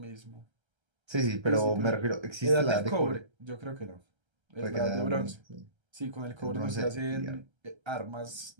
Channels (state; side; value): late; left; 1.3 ms